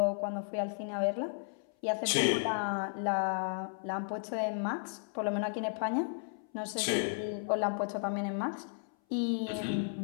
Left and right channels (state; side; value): silent; right; 55 dB below the other